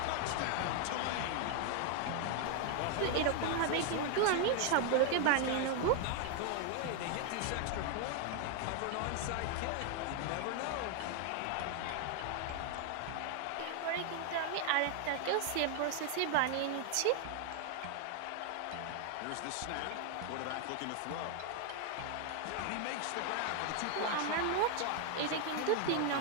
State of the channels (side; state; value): both; different; correlation 0.00